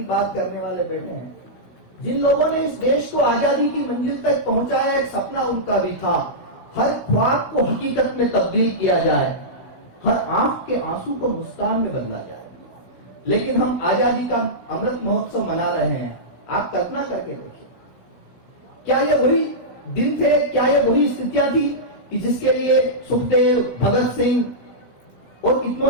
बात करने वाले बैठे हैं, जिन लोगों ने इस देश को आजादी की मंजिल तक पहुंचाया, एक सपना उनका भी था हर ख्वाब को हकीकत में तब्दील किया जाए, हर आंख के आंसू को मुस्कान में बदला जाए। लेकिन हम आजादी का अमृत महोत्सव मना रहे हैं। आप कल्पना करके देखिए, क्या ये वही दिन थे, क्या ये वही स्थितियां थी कि जिसके लिए सुखदेव, भगत सिंह और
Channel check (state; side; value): late; right; 16 ms